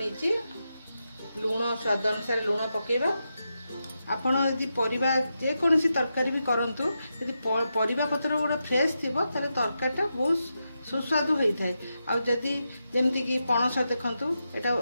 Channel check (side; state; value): both; inverted; correlation -0.87